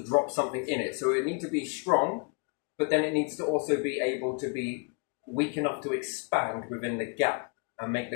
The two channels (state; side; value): quieter; right; 34.6 dB